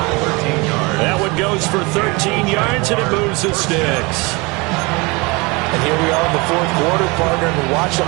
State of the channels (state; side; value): quieter; left; 26.3 dB